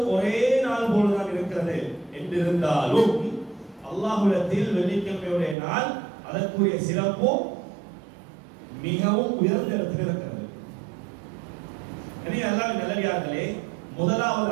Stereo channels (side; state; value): left; drops out; at 5.6 s